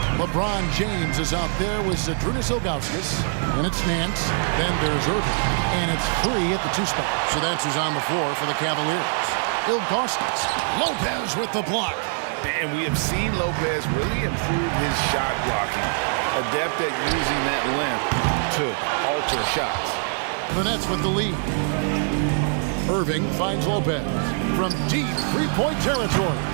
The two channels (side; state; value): left; silent; 57 dB below the other